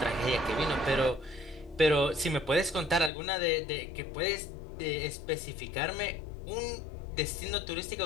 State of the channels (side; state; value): right; drops out; at 3.1 s